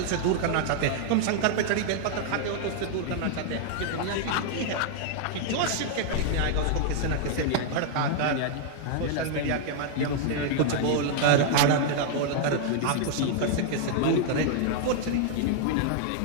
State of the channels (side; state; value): both; different; correlation 0.00